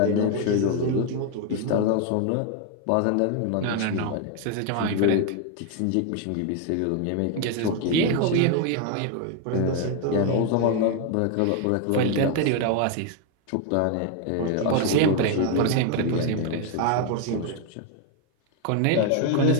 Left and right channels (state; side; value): different; both; correlation 0.01